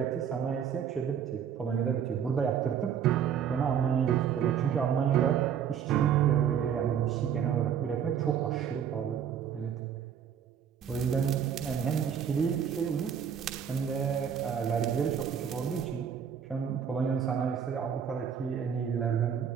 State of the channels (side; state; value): left; quieter; 8.2 dB